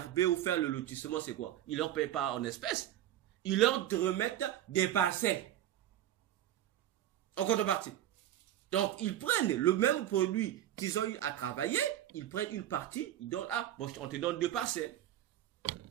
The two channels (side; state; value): left; quieter; 12.2 dB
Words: ou faire le lotissement, c'est quoi? Ils ne leur payent pas en espèces. Ils leur remettent des parcelles en contrepartie. Donc, ils prennent le même produit qu'ils ont eu à travailler, ils prennent une partie, ils donnent, on te donne 2 parcelles.